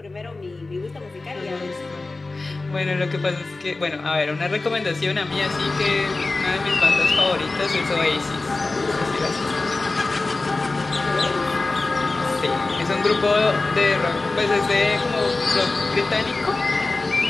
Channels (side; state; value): right; quieter; 3.4 dB